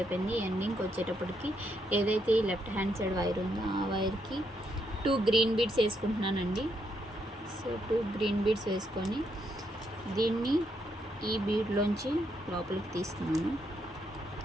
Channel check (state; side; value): normal; both; correlation 0.77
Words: ఎండింగ్కి వచ్చేటప్పటికి ఏదైతే ఈ లెఫ్ట్ హ్యాండ్ సైడ్ వైర్ ఉందో ఆ వైర్కి 2 గ్రీన్ బీడ్స్ వేసుకుంటున్నానండి. సో 2 గ్రీన్ బీడ్స్ వేసుకొని దీన్ని ఈ బీడ్లోంచి లోపలికి తీస్తున్నాను.